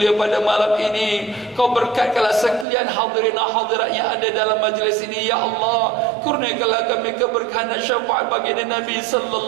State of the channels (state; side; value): drops out; left; at 2.7 s